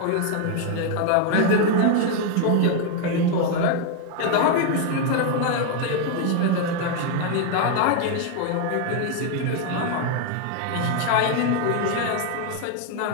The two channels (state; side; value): different; both; correlation 0.01